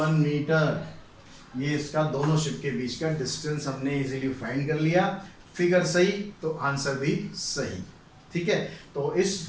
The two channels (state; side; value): identical; both; correlation 1.00